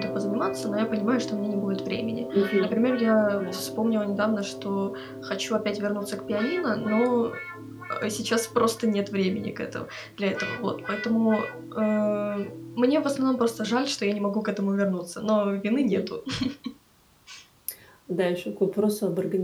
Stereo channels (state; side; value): identical; both; correlation 1.00